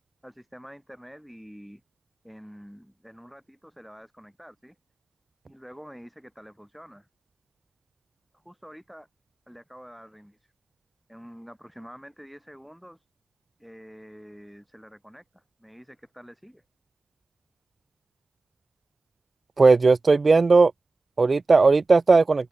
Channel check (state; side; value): quieter; left; 3.6 dB